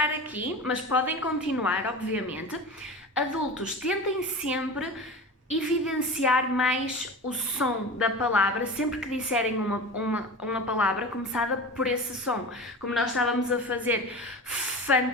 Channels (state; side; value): normal; both; correlation 0.31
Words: aqui, mas podem continuar, obviamente. Adultos, tentem sempre evidenciar mais o som da palavra, sempre que disserem uma palavra começada por esse som. Como nós estávamos a fazer,